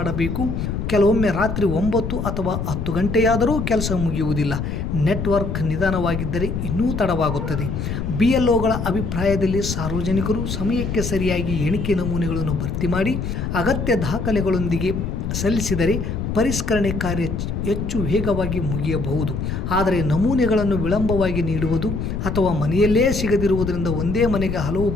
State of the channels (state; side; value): noise; left; rumble, 3 dB below the sound